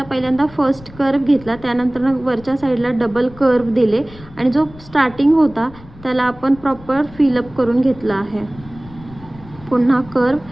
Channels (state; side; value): noise; left; rumble, 20 dB below the sound